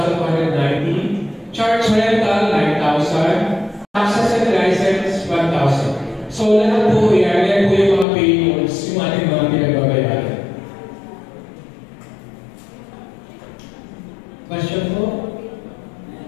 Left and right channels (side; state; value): right; drops out; at 8.1 s